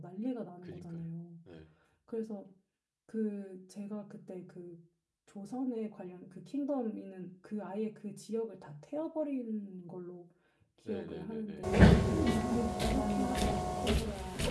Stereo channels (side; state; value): both; identical; correlation 1.00